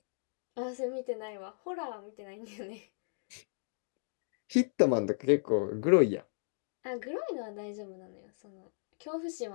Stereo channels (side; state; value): right; silent; digital silence